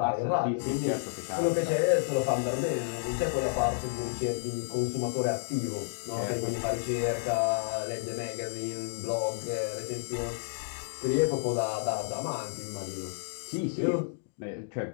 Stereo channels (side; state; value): right; silent; digital silence